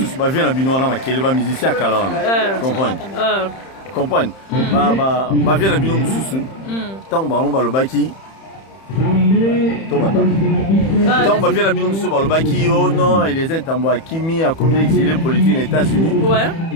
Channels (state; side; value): late; right; 31 ms